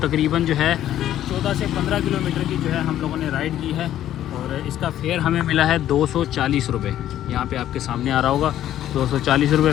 जो है 14 से 15 किलोमीटर की जो है हम लोगों ने राइड की है। और इसका फेयर हमें मिला है 240 रुपये। यहाँ पे आपके सामने आ रहा होगा 240 रुपये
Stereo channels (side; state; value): right; quieter; 12.0 dB